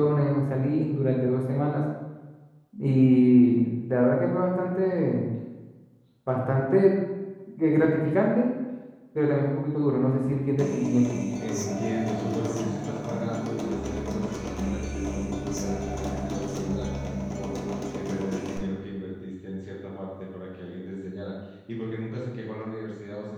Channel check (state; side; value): identical; both; correlation 1.00